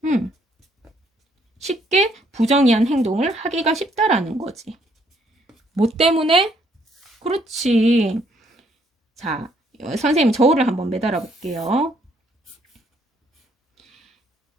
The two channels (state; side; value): normal; both; correlation 0.68